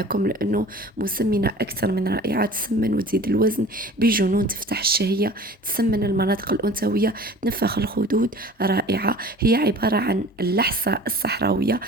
لأنه مسمنة أكثر من رائعة، تسمن وتزيد الوزن بجنون، تفتح الشهية، تسمن المناطق الأنثوية، تنفخ الخدود. رائعة، هي عبارة عن اللحسة الصحراوية.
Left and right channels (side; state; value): both; normal; correlation 0.43